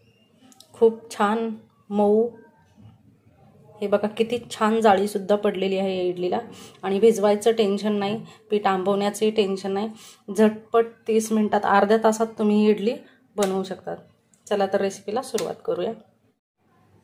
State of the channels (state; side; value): identical; both; correlation 1.00